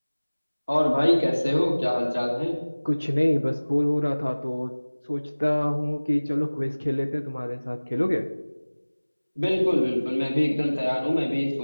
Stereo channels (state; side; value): inverted; both; correlation -1.00